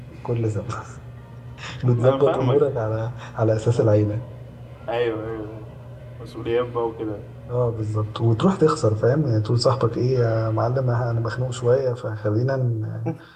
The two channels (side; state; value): both; identical; correlation 1.00